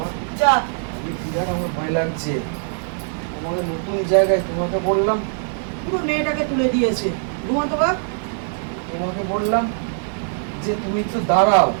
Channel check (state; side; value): silent; left; 60 dB below the other